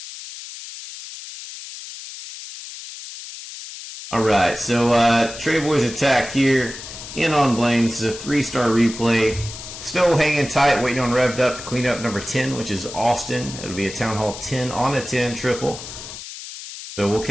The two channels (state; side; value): noise; left; hiss, 12 dB below the sound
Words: Alright, so Trey Boy's attack here. In on Blame. This is a 3-star replay. Still hanging tight, waiting on Revved Up to clean up number 10, which is Austin. It'll be a Town Hall 10 on a 10 triple. So we'll